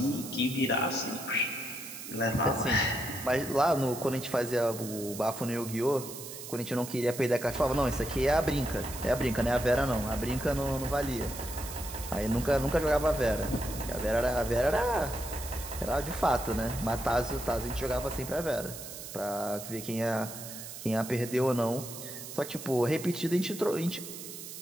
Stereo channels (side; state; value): right; noise; hiss, 11 dB below the sound